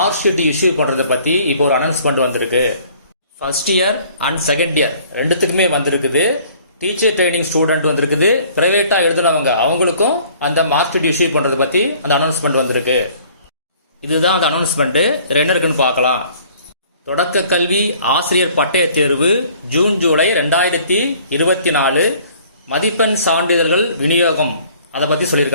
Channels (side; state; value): both; inverted; correlation -0.55